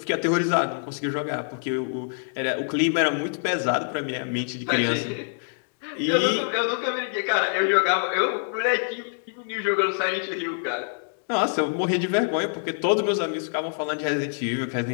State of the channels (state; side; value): silent; right; digital silence